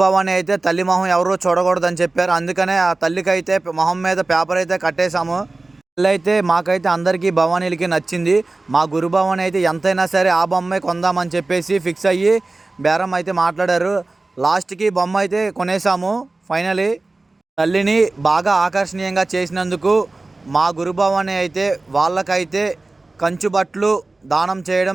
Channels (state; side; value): quieter; left; 3.2 dB